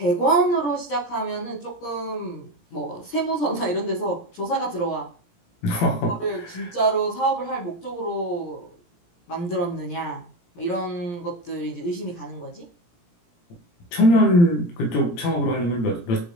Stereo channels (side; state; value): right; late; 17 ms